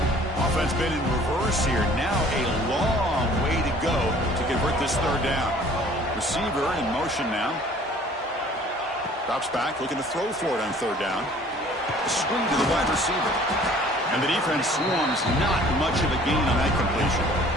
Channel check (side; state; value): both; normal; correlation 0.52